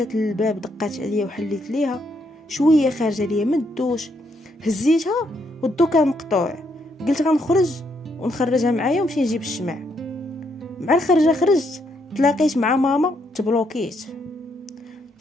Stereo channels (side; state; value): both; normal; correlation 0.75